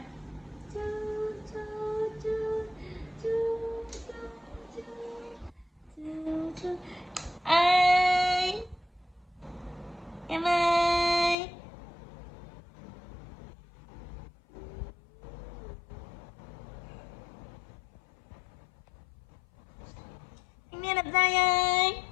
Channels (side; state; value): right; drops out; at 11.4 s